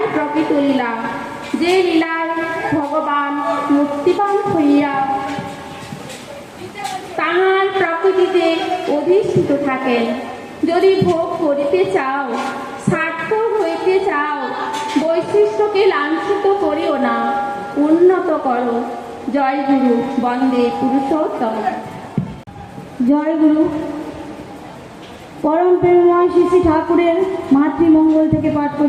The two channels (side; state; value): both; identical; correlation 1.00